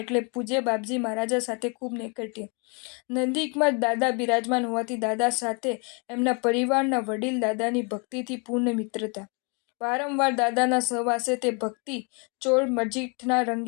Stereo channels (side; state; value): right; quieter; 34.2 dB